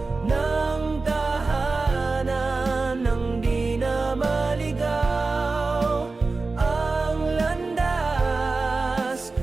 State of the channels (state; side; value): quieter; left; 3.7 dB